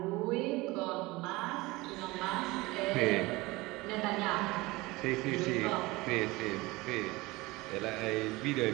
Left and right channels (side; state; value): left; quieter; 21.5 dB